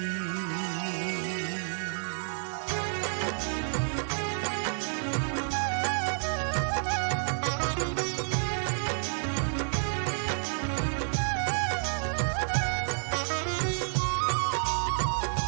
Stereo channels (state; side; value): silent; left; digital silence